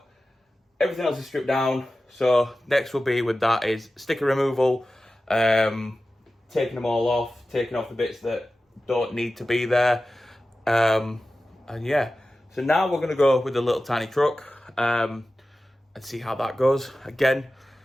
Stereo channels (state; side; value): normal; both; correlation 0.95